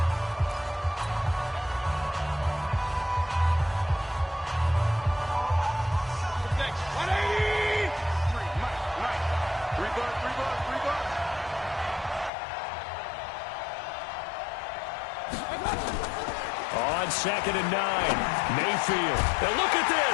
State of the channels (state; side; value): drops out; right; at 12.3 s